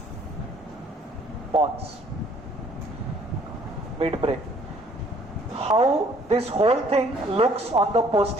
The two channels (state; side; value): normal; both; correlation 0.59